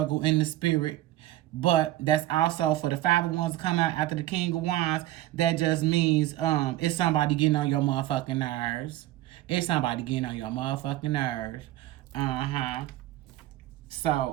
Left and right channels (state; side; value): quieter; left; 15.3 dB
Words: in the spirit. But that's also for the Five of Wands to come out after the King of Wands. That just means it's somebody getting on your motherfucking nerves. It's somebody getting on your motherfucking nerves.